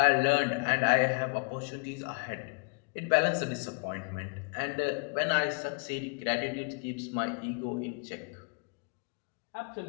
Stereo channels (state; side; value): quieter; right; 36.7 dB